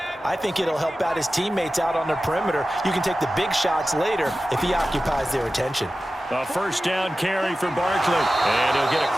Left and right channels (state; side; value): normal; both; correlation 0.94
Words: I think it'll help out his teammates out on the perimeter. You can take the big shots later if he occupies their attention. A 1st down carry for Barkley. And he'll get